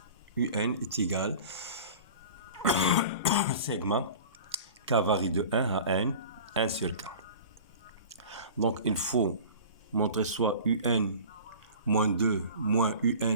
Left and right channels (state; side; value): inverted; both; correlation -0.40